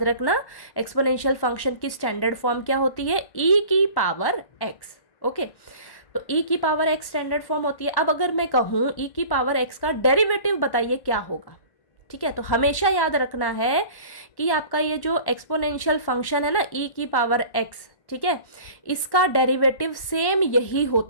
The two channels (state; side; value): late; right; 1.1 ms